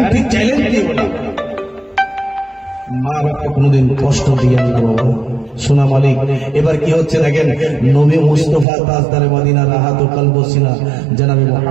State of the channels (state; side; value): drops out; left; at 8.7 s